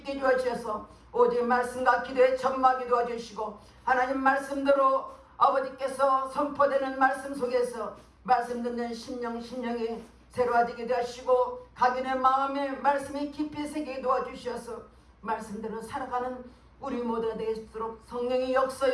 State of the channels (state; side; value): identical; both; correlation 1.00